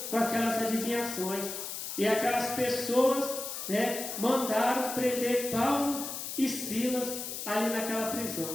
com aquelas adivinhações. E aquelas pessoas, né, mandaram prender Paulo e Silas ali naquela prisão.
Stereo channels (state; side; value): noise; left; hiss, 6 dB below the sound